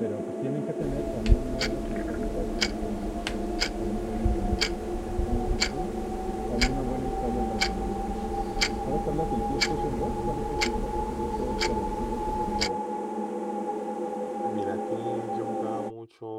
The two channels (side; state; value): both; identical; correlation 1.00